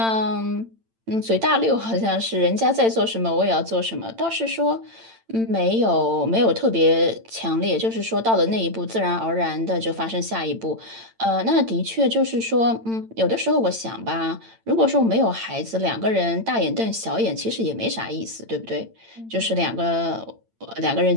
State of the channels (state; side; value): late; left; 8.9 ms